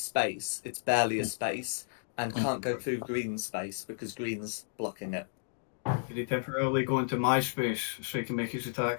space. It's barely a space and can't go through green space because green's blocking it. Can he temporarily go into my space so he can make his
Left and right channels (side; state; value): right; silent; digital silence